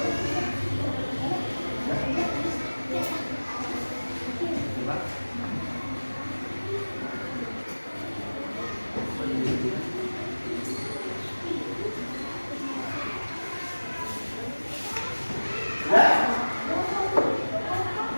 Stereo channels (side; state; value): both; inverted; correlation -1.00